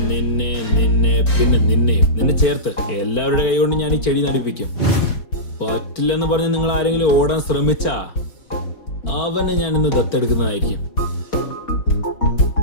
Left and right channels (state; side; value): late; right; 4.5 ms